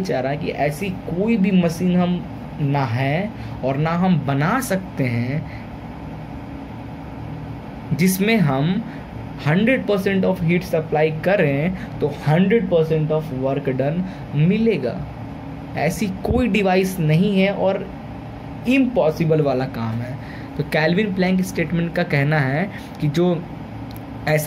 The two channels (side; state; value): both; identical; correlation 1.00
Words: रहा है कि ऐसी कोई भी मशीन हम ना है और ना हम बना सकते हैं जिसमें हम 100% ऑफ हीट सप्लाई करें तो 100% ऑफ वर्क डन मिलेगा। ऐसी कोई डिवाइस नहीं है और इम्पॉसिबल वाला काम है। तो कैल्विन प्लैंक स्टेटमेंट का कहना है कि जो